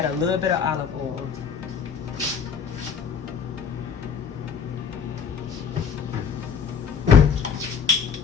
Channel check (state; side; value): quieter; right; 6.6 dB